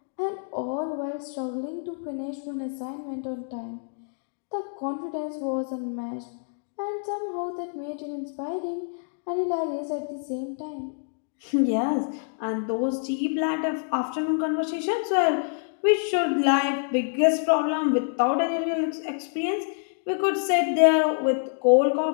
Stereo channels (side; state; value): right; silent; digital silence